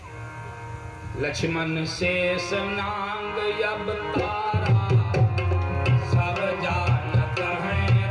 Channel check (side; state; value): both; identical; correlation 1.00